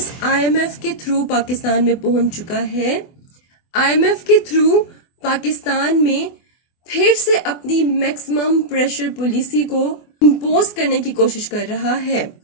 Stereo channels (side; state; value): right; late; 24 ms